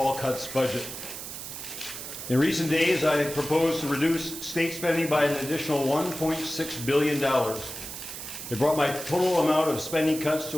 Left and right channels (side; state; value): right; noise; hiss, 9 dB below the sound